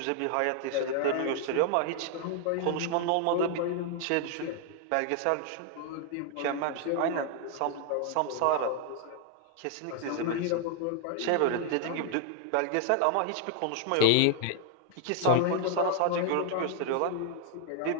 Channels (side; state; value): both; different; correlation 0.00